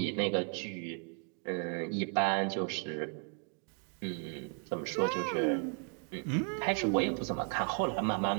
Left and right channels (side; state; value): left; quieter; 38.2 dB